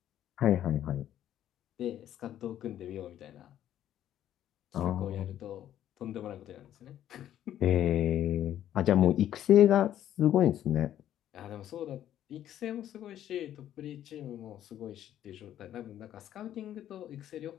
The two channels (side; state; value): right; quieter; 11.5 dB